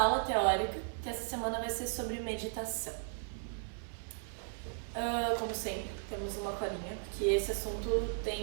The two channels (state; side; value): silent; left; 54 dB below the other